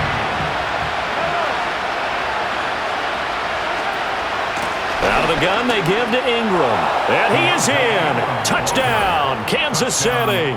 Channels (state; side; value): identical; both; correlation 1.00